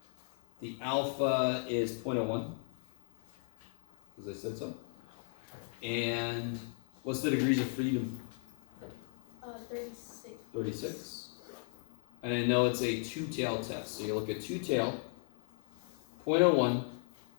the alpha is 0.01, because I said so. And what's the degrees of freedom? 36. 36. And I know it's a two-tail test. So you look at two-tail, 0.01,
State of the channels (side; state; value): right; silent; 53 dB below the other